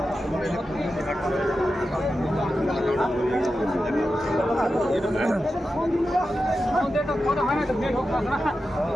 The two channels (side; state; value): both; normal; correlation 0.91